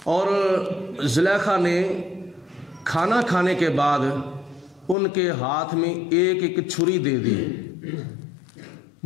اور زلیخا نے کھانا کھانے کے بعد ان کے ہاتھ میں ایک ایک چھری دے دی۔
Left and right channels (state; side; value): drops out; right; at 5.0 s